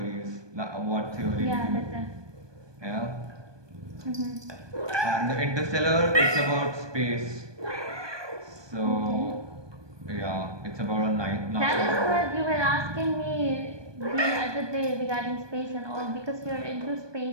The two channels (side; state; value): left; late; 1.2 ms